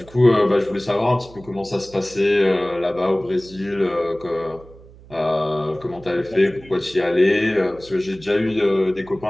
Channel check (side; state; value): right; noise; hum, 22 dB below the sound